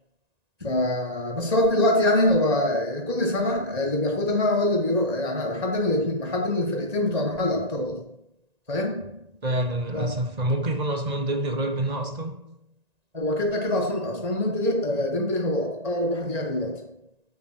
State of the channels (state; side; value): late; left; 1.9 ms